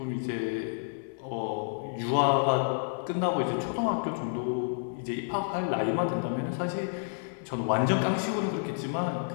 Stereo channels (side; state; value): right; silent; 58 dB below the other